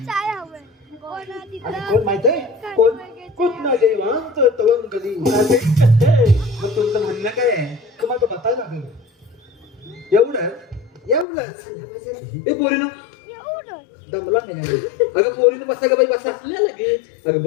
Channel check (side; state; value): right; drops out; at 11.2 s